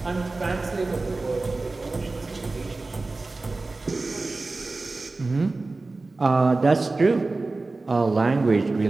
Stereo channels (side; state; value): left; quieter; 3.4 dB